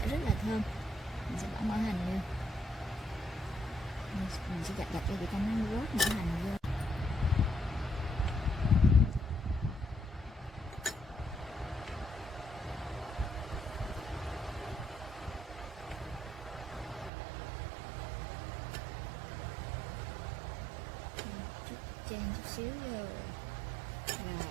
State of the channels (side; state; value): left; drops out; at 17.1 s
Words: rất là thơm. Mình sẽ bỏ mỡ hành vô, mình sẽ dập cho cho nó rớt mỡ hành vô. Trang chút xíu rồi.